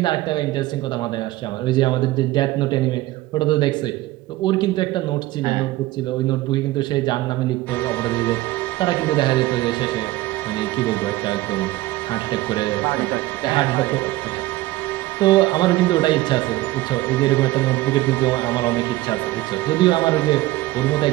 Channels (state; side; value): quieter; left; 17.5 dB